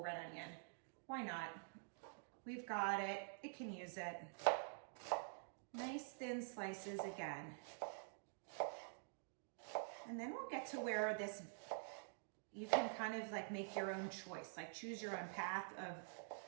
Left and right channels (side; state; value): left; silent; digital silence